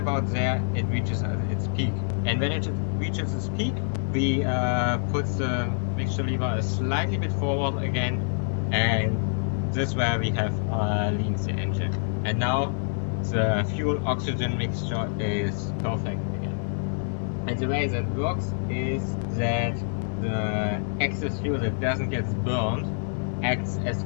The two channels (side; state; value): right; silent; digital silence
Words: there, it reaches its peak. And when it reaches its peak, we put the mixture lever a slightly bit forward again. And this is where we have leaned the engine. And now the fuel oxygen mixture is perfect again. And the way that works is that the excess fuel that doesn't get burned acts as